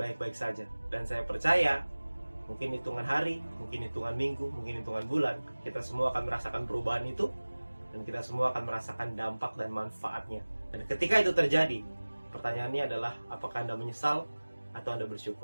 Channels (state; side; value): inverted; both; correlation -1.00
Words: saja. Dan saya percaya mungkin hitungan hari, mungkin hitungan minggu, mungkin hitungan bulan, kita semua akan merasakan perubahan itu, dan kita semua akan merasakan dampak dan manfaatnya. Dan ketika itu terjadi, pertanyaannya adalah apakah Anda menyesal atau Anda